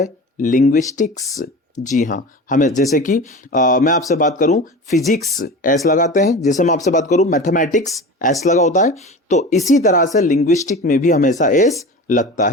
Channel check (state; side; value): normal; both; correlation 0.33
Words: लिंग्विस्टिक्स। जी हां, हमें जैसे कि मैं आपसे बात करूं फिजिक्स एस लगाते हैं, जैसे मैं आपसे बात करूं मैथमेटिक्स एस लगा होता है, तो इसी तरह से लिंग्विस्टिक में भी हमेशा एस लगता